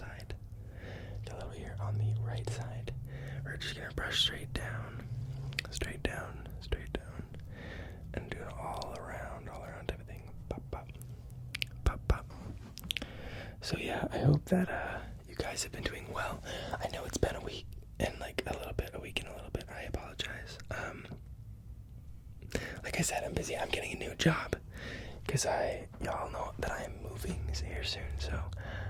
got a little here on the right side. We're just gonna brush straight down, and do it all around everything. Pop, pop, pop, pop. So yeah, I hope that you guys have been doing well. I know it's been a week and a week and a little bit. I apologize. Like I said, I'm busy. I'm getting a new job because y'all know that I am moving here soon. So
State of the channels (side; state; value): both; identical; correlation 1.00